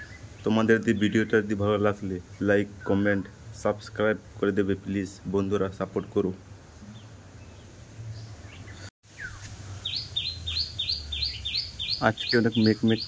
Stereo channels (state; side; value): identical; both; correlation 1.00